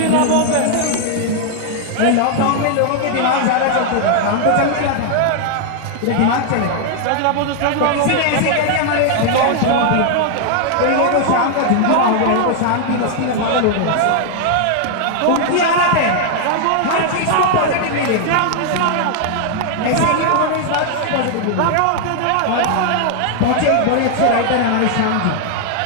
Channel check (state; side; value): different; both; correlation 0.00